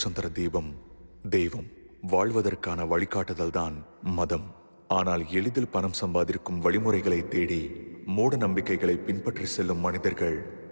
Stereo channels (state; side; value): inverted; both; correlation -1.00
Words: தர தீபம் தெய்வம். வாழ்வதற்கான வழிகாட்டுதல் தான் மதம். ஆனால் எளிதில் பணம் சம்பாதிக்கும் வழிமுறைகளை தேடி மூட நம்பிக்கைகளை பின்பற்றி செல்லும் மனிதர்கள்